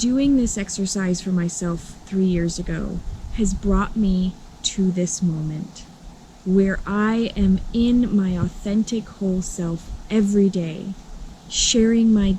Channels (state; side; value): identical; both; correlation 1.00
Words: this exercise for myself 3 years ago has brought me to this moment where I am in my authentic whole self every day, sharing my